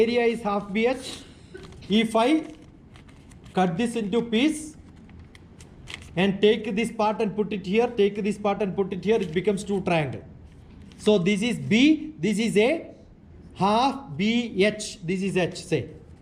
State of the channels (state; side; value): identical; both; correlation 1.00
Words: is half BH? If I cut this into piece and take this part and put it here, take this part and put it here, it becomes two triangle. So this is B, this is A, half BH, this is H, say.